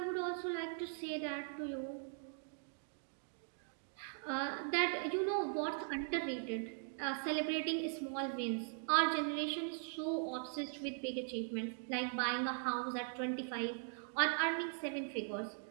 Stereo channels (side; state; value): left; silent; digital silence